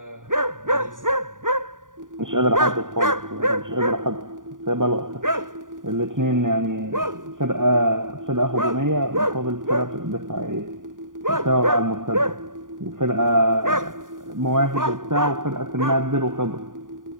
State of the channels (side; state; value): left; late; 0.88 ms